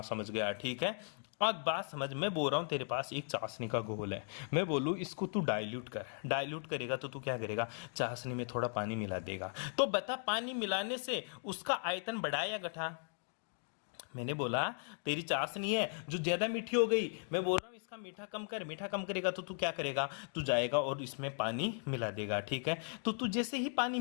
समझ गया। ठीक है, अब बात समझ। मैं बोल रहा हूं तेरे पास एक चाशनी का घोल है, मैं बोलूं इसको तू डाइल्यूट कर। डाइल्यूट करेगा तो तू क्या करेगा? चाशनी में थोड़ा पानी मिला देगा। तो बता, पानी मिलाने से उसका आयतन बढ़ा या घटा? मैंने बोला तेरी चाशनी है जो ज्यादा मीठी हो गई, मैं बोल रहा हूँ इसका मीठा कम कर। मीठा कम करेगा तो तू क्या करेगा? तू जाएगा और इसमें पानी मिला देगा। ठीक है, तो तू जैसे ही पानी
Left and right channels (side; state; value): right; silent; 53 dB below the other